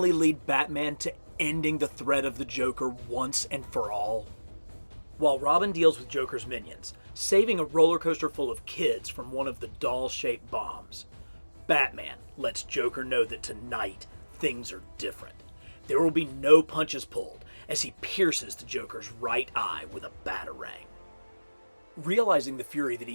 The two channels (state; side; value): inverted; both; correlation -1.00